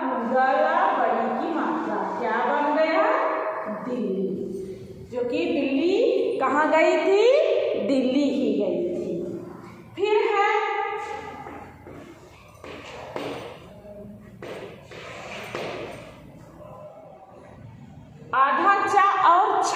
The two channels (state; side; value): identical; both; correlation 1.00